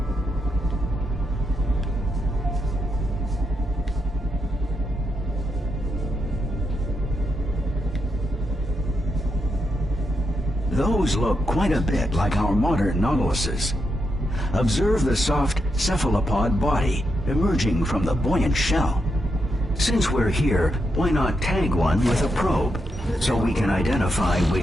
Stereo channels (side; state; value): both; normal; correlation 0.83